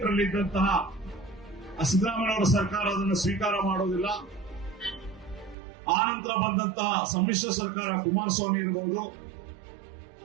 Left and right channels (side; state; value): left; drops out; at 5.6 s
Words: ಇದ್ದಂತಹ ಸಿದ್ದರಾಮಯ್ಯನವರ ಸರ್ಕಾರ ಅದನ್ನು ಸ್ವೀಕಾರ ಮಾಡೋದಿಲ್ಲ. ಆ ನಂತರ ಬಂದಂತಹ ಸಮ್ಮಿಶ್ರ ಸರ್ಕಾರ ಕುಮಾರಸ್ವಾಮಿ ಇರಬಹುದು,